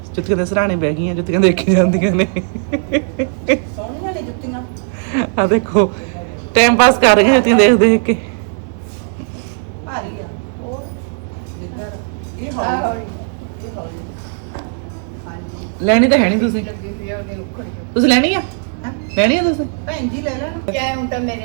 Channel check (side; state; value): left; silent; 60 dB below the other